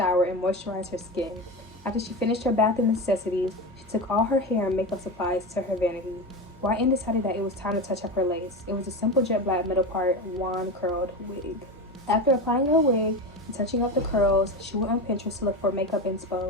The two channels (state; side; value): normal; both; correlation 0.22